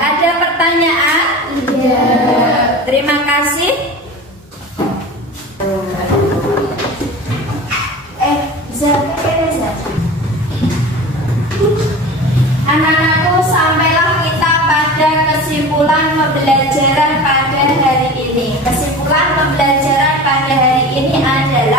Ada pertanyaan? Terima kasih. Anak-anakku, sampailah kita pada kesimpulan pembelajaran pada hari ini. Kesimpulan pembelajaran pada hari ini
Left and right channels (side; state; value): both; normal; correlation 0.34